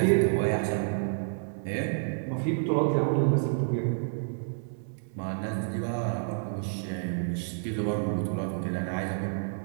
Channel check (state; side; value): silent; left; 58 dB below the other